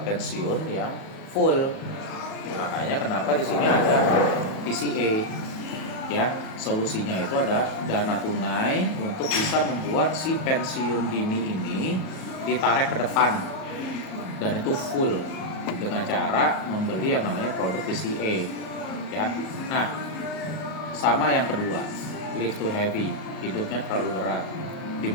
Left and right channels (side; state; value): right; late; 38 ms